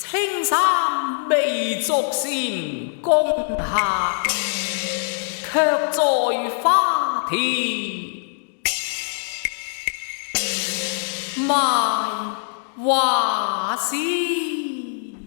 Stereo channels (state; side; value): silent; right; digital silence